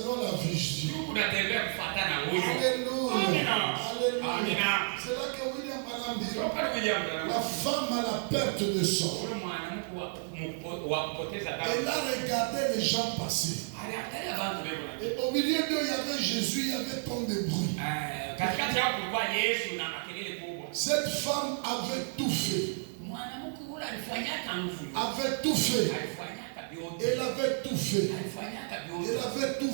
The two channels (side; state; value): left; silent; digital silence